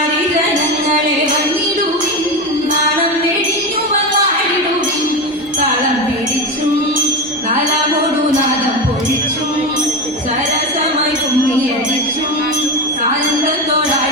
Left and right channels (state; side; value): normal; both; correlation 0.18